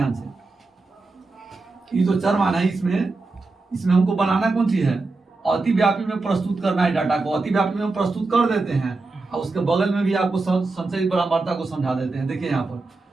से, ये जो चरमान है इसमें हमको बनाना कौन सी है? अतिव्यापी में प्रस्तुत करना है डाटा को। अतिव्यापी में प्रस्तुत कर देते हैं और उसके बगल में भी आपको संचय बारंबारता को समझा देते हैं। देखिए यहाँ पर,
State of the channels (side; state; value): left; quieter; 3.5 dB